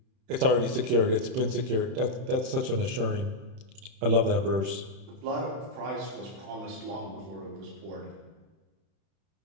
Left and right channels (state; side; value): late; left; 31 ms